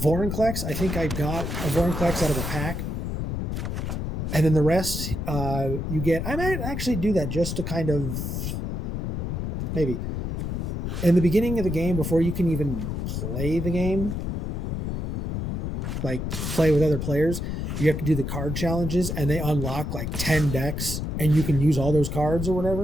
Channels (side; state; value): left; noise; rumble, 2 dB below the sound